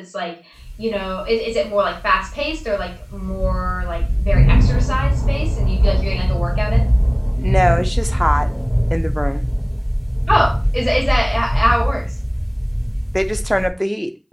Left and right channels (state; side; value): identical; both; correlation 1.00